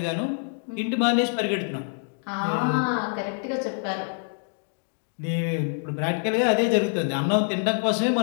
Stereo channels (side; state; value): right; silent; 61 dB below the other